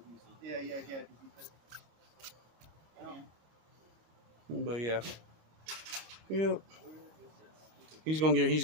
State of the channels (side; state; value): left; late; 25 ms